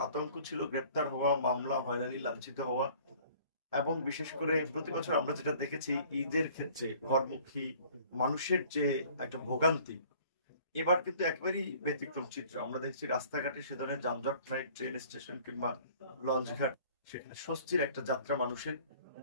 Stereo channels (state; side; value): inverted; both; correlation -0.52